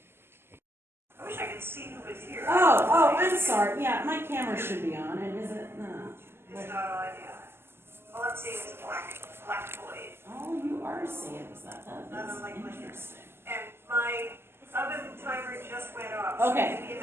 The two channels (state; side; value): late; left; 0.12 ms